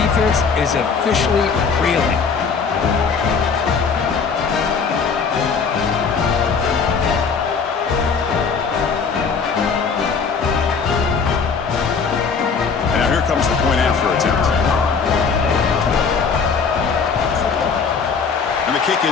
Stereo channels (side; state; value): right; quieter; 5.5 dB